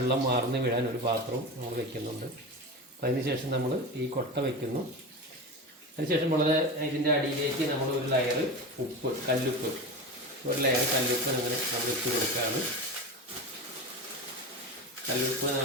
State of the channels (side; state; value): both; normal; correlation 0.25